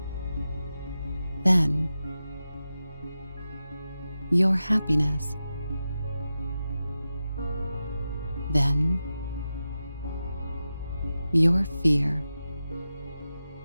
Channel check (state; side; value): inverted; both; correlation -0.92